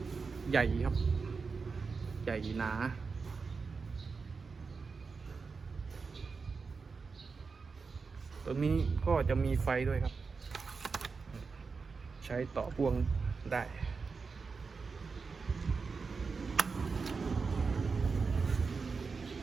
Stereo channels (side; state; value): left; quieter; 4.8 dB